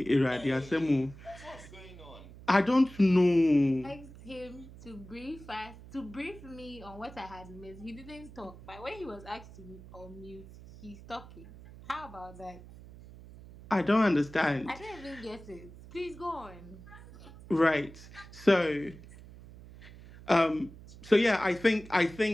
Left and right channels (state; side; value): noise; right; hum, 18 dB below the sound